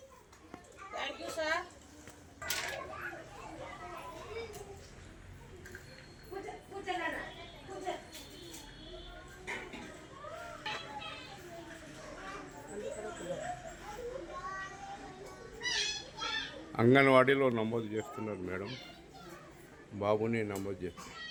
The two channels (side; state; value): both; identical; correlation 1.00